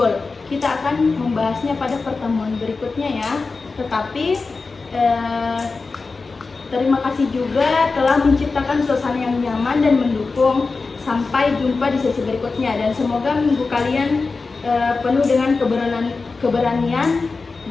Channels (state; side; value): quieter; right; 4.1 dB